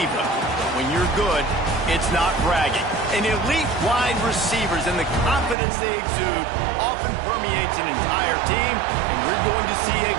But when you're good, it's not bragging. And elite wide receivers and the confidence they exude often permeates an entire team, and we're going to see a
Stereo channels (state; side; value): drops out; left; at 5.6 s